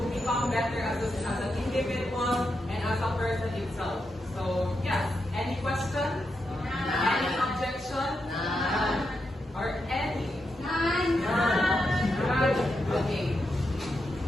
become better as an individual and as a person itself. So yes, any questions? Any objection? Or any? None. Okay.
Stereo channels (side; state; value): both; normal; correlation 0.85